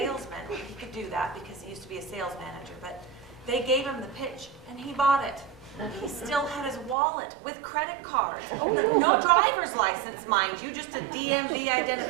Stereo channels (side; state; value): left; drops out; at 7.0 s